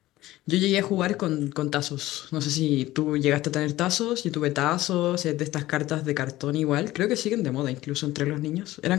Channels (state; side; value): quieter; right; 16.5 dB